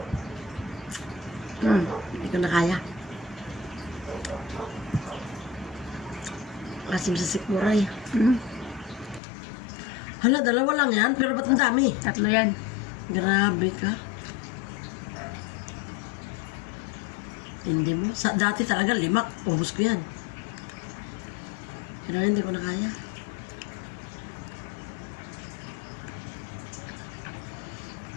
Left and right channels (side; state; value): right; drops out; at 9.2 s